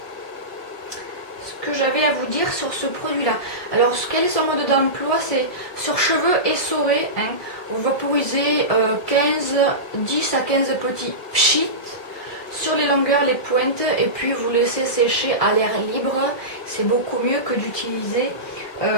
que j'avais à vous dire sur ce produit là. Alors quel est son mode d'emploi? C'est sur cheveux essorés, hein. Vous vaporisez 10 à 15 petits pchits sur les longueurs, les pointes, et puis vous laissez sécher à l'air libre. C'est beaucoup mieux que d'utiliser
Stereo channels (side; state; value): right; late; 1.6 ms